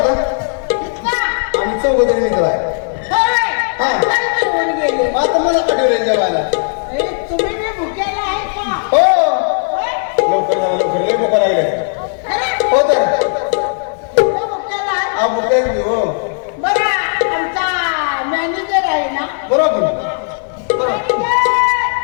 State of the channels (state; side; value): silent; right; digital silence